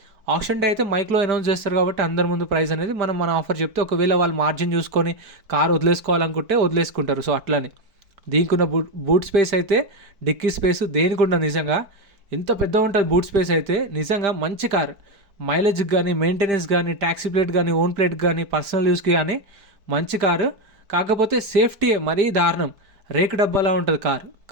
ఆప్షన్ డే అయితే మైక్లో అనౌన్స్ చేస్తారు కాబట్టి అందరి ముందు ప్రైస్ అనేది మన ఆఫర్ చెప్తే, ఒకవేళ వాళ్ళు మార్జిన్ చూసుకొని కార్ వదిలేసుకోవాలనుకుంటే వదిలేసుకుంటారు. సో అట్లని దీనికి ఉన్న బూట్ స్పేస్ అయితే, డిక్కీ స్పేస్ దేనికి ఉండదు. నిజంగా ఎంత పెద్ద ఉంటుంది బూట్ స్పేస్ అయితే. నిజంగా మంచి కార్, మైలేజ్కి కానీ, మెయింటెనెన్స్ కానీ, ట్యాక్సీ ప్లేట్ కానీ, ఓన్ ప్లేట్ కానీ, పర్సనల్ యూస్కి కానీ మంచి కారు. కాకపోతే సేఫ్టీ మరీ దారుణం, రేకు డబ్బాలా ఉంటుంది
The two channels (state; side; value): late; left; 4.5 ms